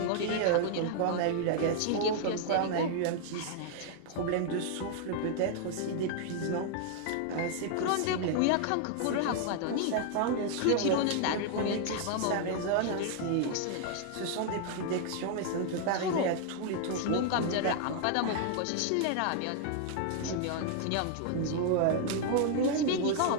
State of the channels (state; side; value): different; both; correlation 0.00